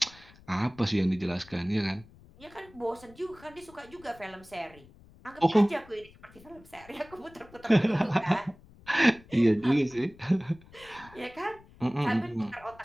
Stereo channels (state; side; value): noise; left; rumble, 24 dB below the sound